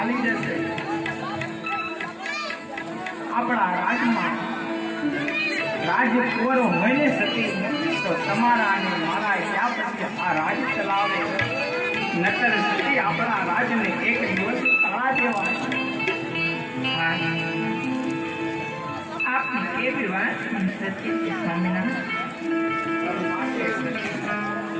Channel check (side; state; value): both; identical; correlation 1.00